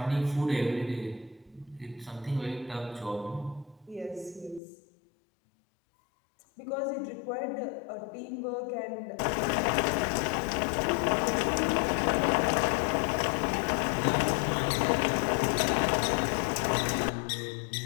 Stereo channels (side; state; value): right; drops out; at 4.6 s